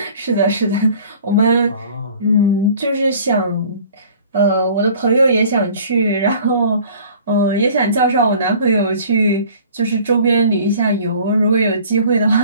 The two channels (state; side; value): inverted; both; correlation -0.49